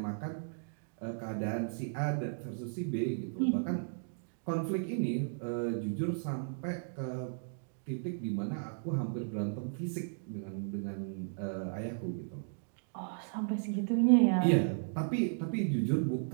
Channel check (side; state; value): left; silent; digital silence